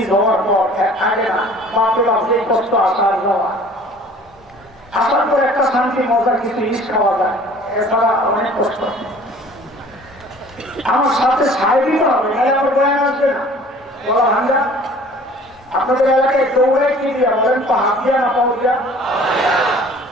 হওয়ার পর আগে না বাপরে বাপ যে কষ্ট আসার যাওয়া, আসার পর একটা শান্তি মজা কিছু ইস খাওয়া যায়, এছাড়া অনেক কষ্ট। আমার সাথে সাই দিতে হবে, নাহলে আমার বয়ান আসবে না। বলা ভাঙ্গা আপনাদের এলাকায় দৌড়ায় কি দিয়া বলেন তো? হাত দিয়া না পাও দিয়া?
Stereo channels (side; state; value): both; normal; correlation 0.49